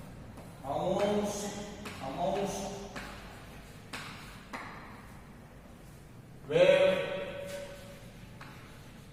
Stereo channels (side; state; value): both; identical; correlation 1.00